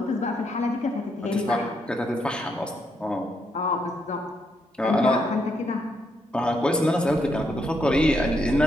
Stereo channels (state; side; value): normal; both; correlation 0.77